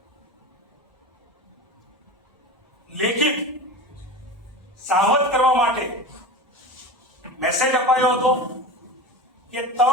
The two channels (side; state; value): both; normal; correlation 0.29